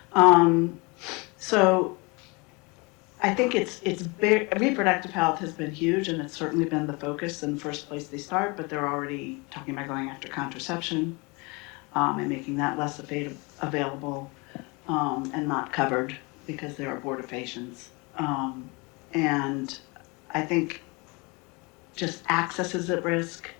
So I think reproductive health has been huge, and it's certainly been the focus in the first place they start, but they're already talking about going after contraception and making that less available and not covered because there are abortifacients. And I think just access is at risk,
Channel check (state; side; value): quieter; right; 27.9 dB